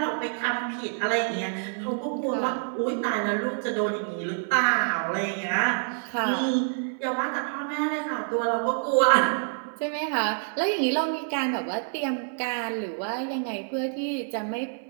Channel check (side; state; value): left; silent; 60 dB below the other